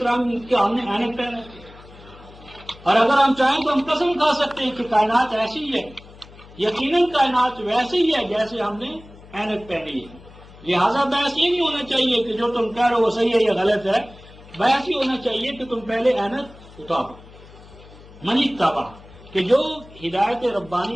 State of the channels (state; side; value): noise; left; hum, 21 dB below the sound